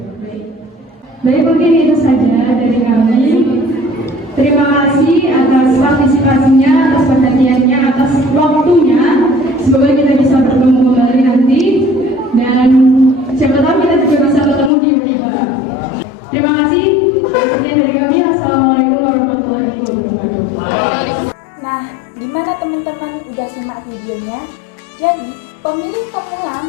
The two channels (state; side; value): drops out; right; at 14.7 s